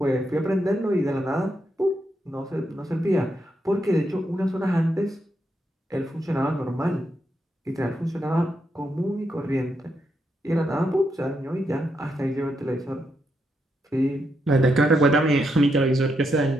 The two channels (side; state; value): both; normal; correlation 0.81